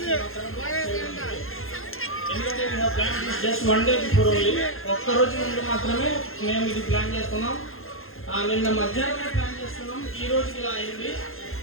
జస్ట్ 1 డే బిఫోర్ ఓన్లీ, ఒక్కరోజు ముందు మాత్రమే మేము ఇది ప్లాన్ చేస్తున్నాం. నిన్న మధ్యాహ్నమే ప్లాన్ చేస్తున్నాం, ఈ రోజుకి ఇలా అయింది.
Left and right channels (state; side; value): late; right; 0.61 ms